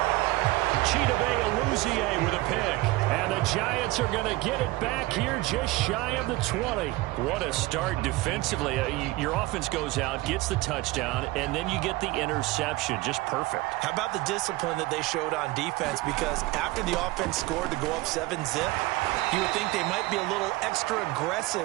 Chidobe Awuzie with a pick. And the Giants are going to get it back here just shy of the 20. What a start defensively. Your offense goes out, gets the touchdown, and then you get the interception. Just perfect. How about the discipline that they showed on defense? Because after the offense scored to go up 7-zip, you would think they might be a little extra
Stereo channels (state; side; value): quieter; left; 19.8 dB